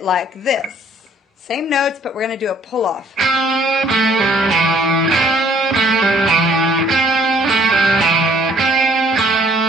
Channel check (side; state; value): both; normal; correlation 0.61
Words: like this. Same notes, but we're going to do a pull-off.